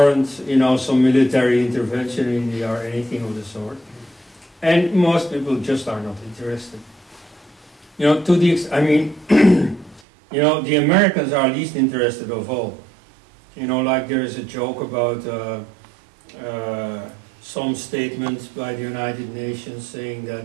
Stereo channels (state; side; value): drops out; left; at 10.0 s